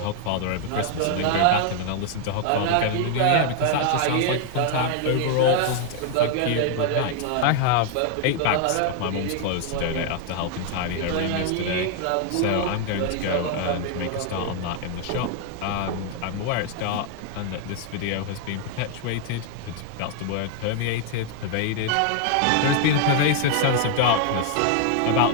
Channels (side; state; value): both; different; correlation 0.00